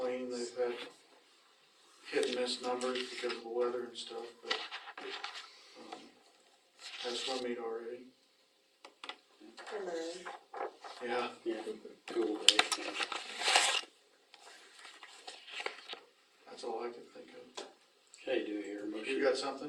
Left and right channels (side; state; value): both; identical; correlation 1.00